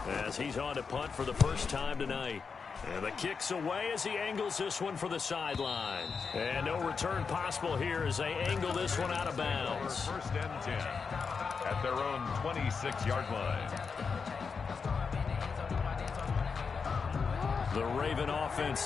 as he's on to punt for the first time tonight. And the kick's away as he angles this one for the sideline. And no return possible here as they angle this one out of bounds. 1st and 10 at their own 26-yard line. The Raven offense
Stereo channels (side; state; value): right; quieter; 5.4 dB